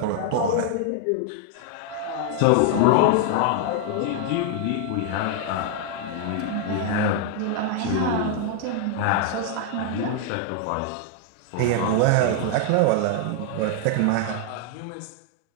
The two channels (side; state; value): both; different; correlation 0.00